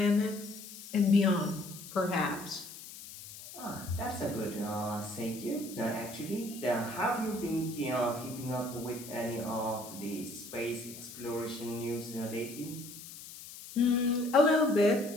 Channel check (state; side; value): noise; left; hiss, 14 dB below the sound